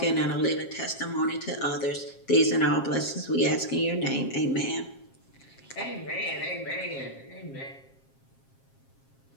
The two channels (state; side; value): late; right; 7.4 ms